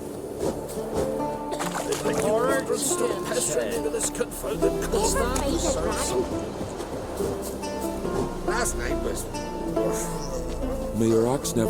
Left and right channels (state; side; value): identical; both; correlation 1.00